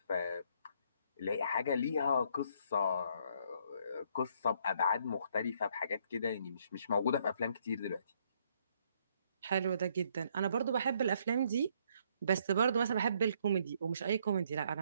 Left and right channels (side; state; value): both; inverted; correlation -0.68